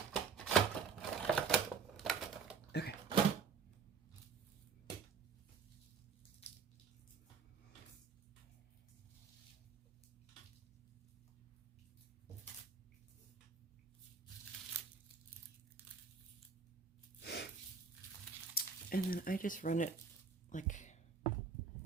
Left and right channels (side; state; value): left; quieter; 5.7 dB